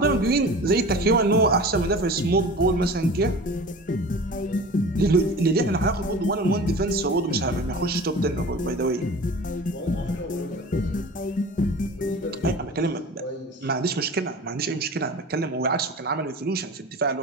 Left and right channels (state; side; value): normal; both; correlation 0.37